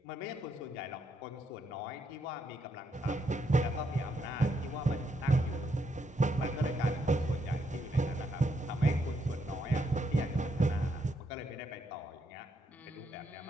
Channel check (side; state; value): both; normal; correlation 0.77